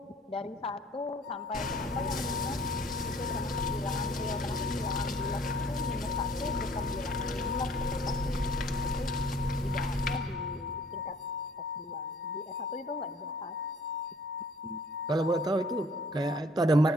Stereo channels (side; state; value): both; normal; correlation 0.56